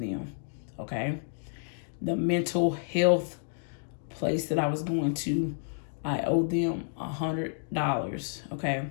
Okay. The mental health place that I was going to, I owe them $100. Okay.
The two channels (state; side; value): silent; right; digital silence